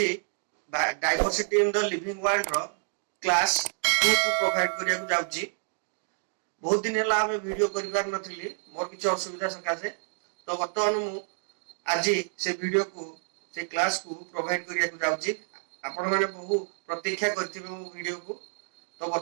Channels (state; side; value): silent; left; digital silence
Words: diversity in the living world रो क्लास 2 को प्रोवाइड करिया को जाउची। बहुत दिन हला हमें वीडियो करिवार नथिली, मोर किछ असुविधा सकासे। तो वर्तमान मु आज से वीडियो को से क्लास को प्रोवाइड करिया को जाउची। आपण माने बहु प्रतीक्षा करथिबे मो वीडियो को। तो